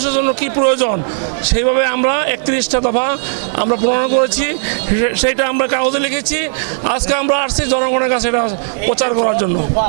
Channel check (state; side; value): silent; left; 70 dB below the other